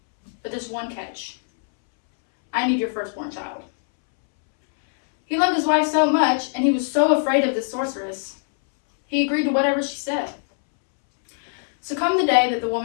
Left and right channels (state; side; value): silent; right; 64 dB below the other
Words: but there's one catch. I need your firstborn child." He loved his wife so much, and he was so afraid of the sorceress, he agreed to whatever she said. So come the day that the